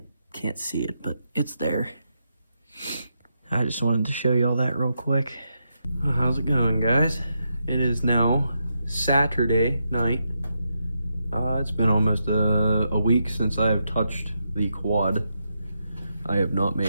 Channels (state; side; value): inverted; both; correlation -0.83